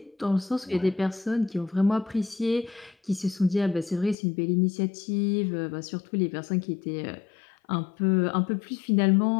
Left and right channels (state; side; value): drops out; right; at 4.2 s